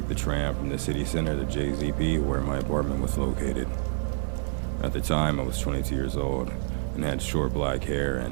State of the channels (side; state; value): left; silent; digital silence